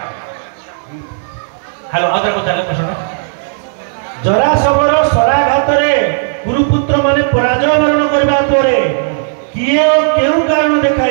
हेलो आदर को चले प्रश्न जरा सबर शराघात गुरुपुत्र माने पराजय वर्ण करबा परे किए ओ केउ कारण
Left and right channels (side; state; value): left; silent; digital silence